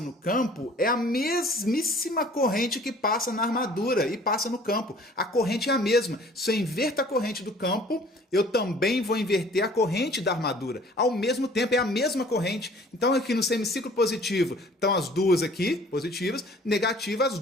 no campo é a mesmíssima corrente que passa na armadura e passa no campo. A corrente é a mesma. Se eu inverto a corrente do campo, eu também vou inverter a corrente da armadura. Ao mesmo tempo, é a mesma corrente. Então, aqui no semiciclo positivo, estão as duas aqui, positivas, negativas, as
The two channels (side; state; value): both; normal; correlation 0.52